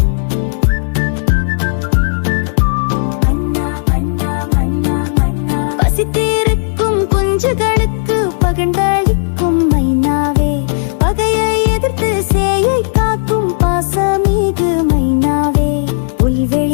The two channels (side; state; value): right; silent; digital silence